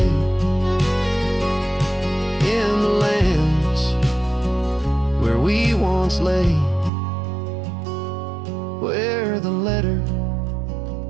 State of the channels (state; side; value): drops out; left; at 6.9 s